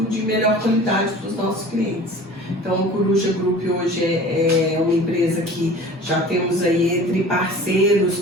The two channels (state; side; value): normal; both; correlation 0.42